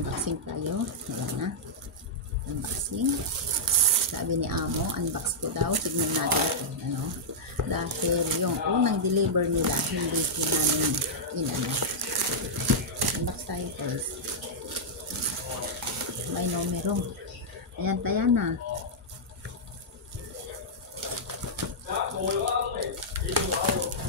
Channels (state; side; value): normal; both; correlation -0.09